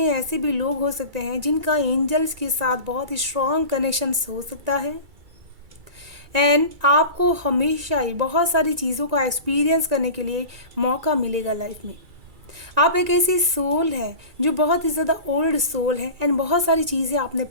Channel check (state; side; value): late; left; 2.3 ms